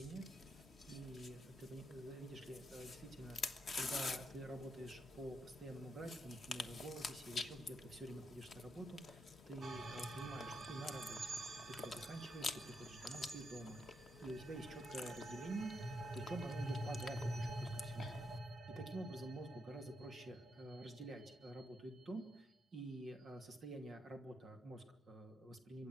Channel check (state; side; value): normal; both; correlation 0.80